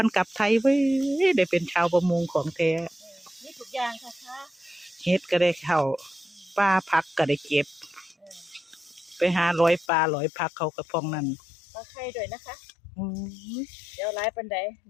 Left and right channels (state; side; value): drops out; right; at 9.9 s